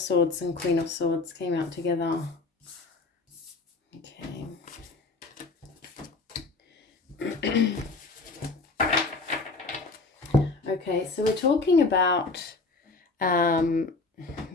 and Queen of Swords came out together. Okay. Okay, so we're talking about,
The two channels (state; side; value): quieter; right; 3.7 dB